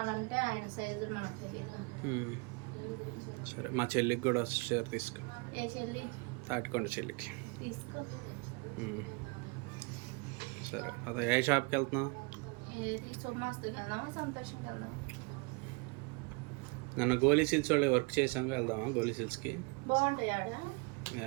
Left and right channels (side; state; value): left; quieter; 29.8 dB